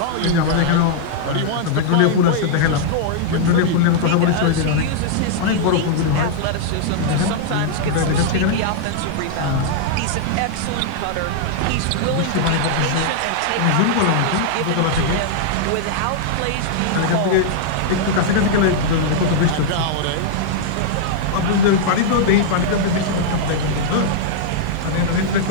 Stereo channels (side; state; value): both; different; correlation -0.01